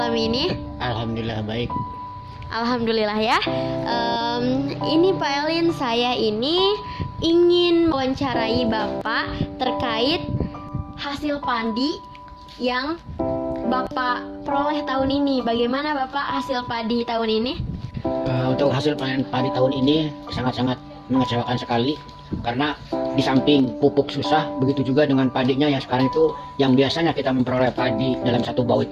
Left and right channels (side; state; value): both; identical; correlation 1.00